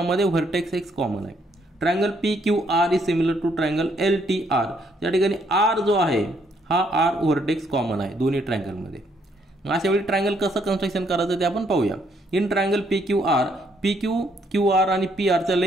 व्हर्टेक्स X कॉमन आहे. Triangle PQR is similar to triangle LTR. या ठिकाणी R जो आहे हा R व्हर्टेक्स कॉमन आहे दोन्ही ट्रायंगलमध्ये. अशा वेळी ट्रायंगल कसं कन्स्ट्रक्शन करायचं ते आपण पाहूया. इन ट्रायंगल PQR, QR आणि PR च्या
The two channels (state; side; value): normal; both; correlation 0.70